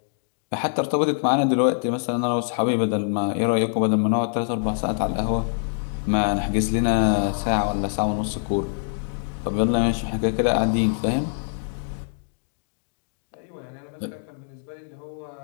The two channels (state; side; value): silent; right; digital silence